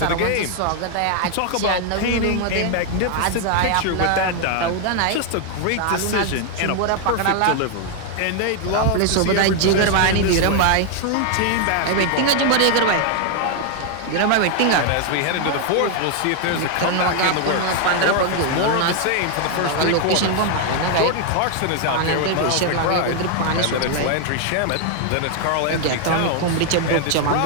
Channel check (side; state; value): both; different; correlation 0.00